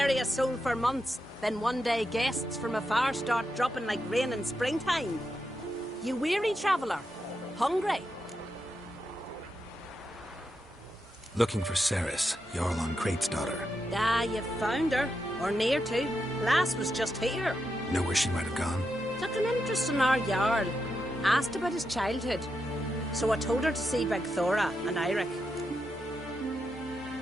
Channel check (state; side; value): normal; both; correlation 0.85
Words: a soul for months. Then one day guests from afar start dropping like rain in springtime. You weary traveller? Hungry? Looking for Ceres, Jarl on Crate's daughter. Ah, you've found her. Or near to. Lass was just here. Know where she might have gone? Took an interest in our Jarl. Asked about his childhood. So I told her to see Big Thora and Eirik.